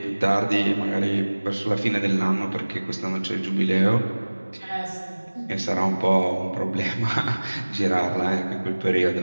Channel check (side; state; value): both; inverted; correlation -1.00